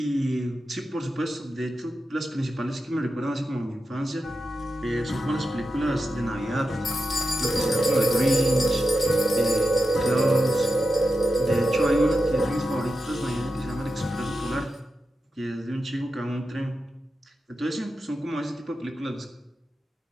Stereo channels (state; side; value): normal; both; correlation 0.90